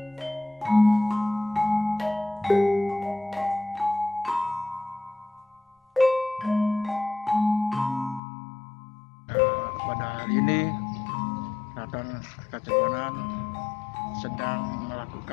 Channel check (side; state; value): right; drops out; at 8.2 s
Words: hari ini Keraton Kacirbonan sedang